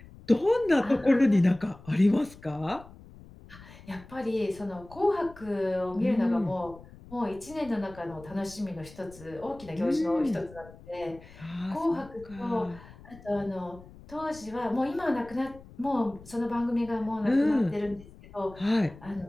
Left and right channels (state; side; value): noise; left; rumble, 20 dB below the sound